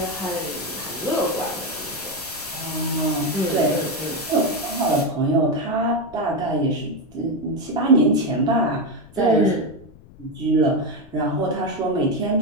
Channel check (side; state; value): left; noise; rumble, 22 dB below the sound